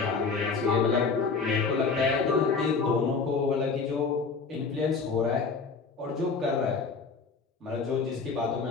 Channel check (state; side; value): quieter; right; 4.8 dB